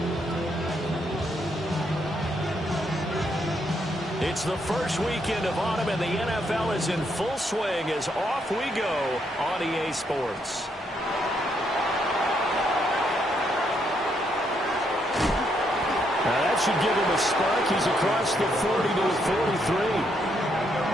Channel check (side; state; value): both; normal; correlation 0.75